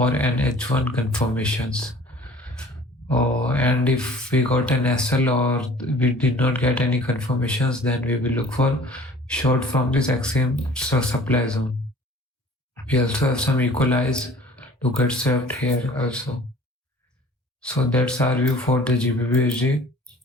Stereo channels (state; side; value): normal; both; correlation 0.48